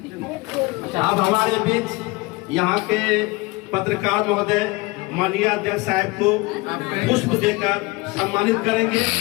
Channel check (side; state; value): right; quieter; 24.1 dB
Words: अब हमारे बीच यहाँ के पत्रकार महोदय माननीय अध्यक्ष साहब को पुष्प देकर सम्मानित करेंगे